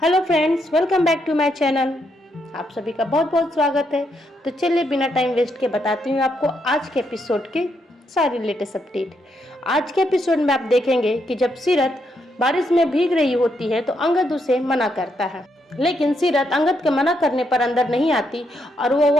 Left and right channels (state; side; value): normal; both; correlation 0.78